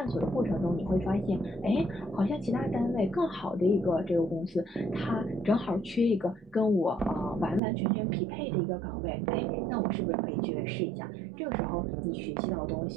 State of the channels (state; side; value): drops out; left; at 7.6 s